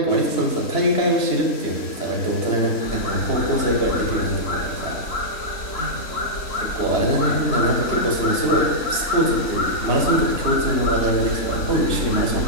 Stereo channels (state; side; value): late; right; 3.6 ms